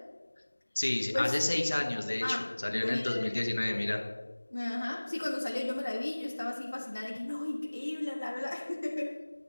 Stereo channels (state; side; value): inverted; both; correlation -1.00